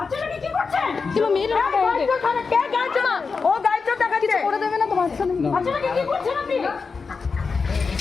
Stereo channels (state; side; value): quieter; right; 4.9 dB